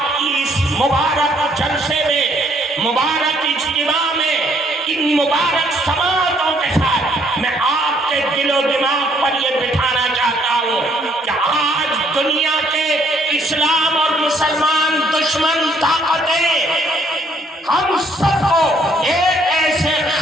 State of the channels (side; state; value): both; normal; correlation 0.66